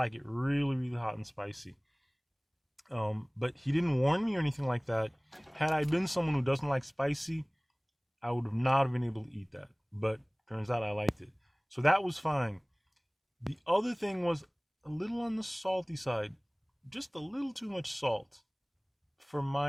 it really, really hot and spicy. But he didn't warn me or anything like that. Had I been someone who doesn't like spicy, I would not have been able to eat that. But turns out I liked it. So that was fine. The other thing was a little on the salty side. Just a little too much salt for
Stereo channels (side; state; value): both; identical; correlation 1.00